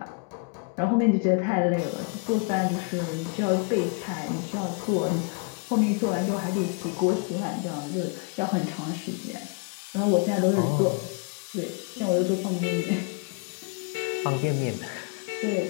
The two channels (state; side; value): quieter; right; 35.4 dB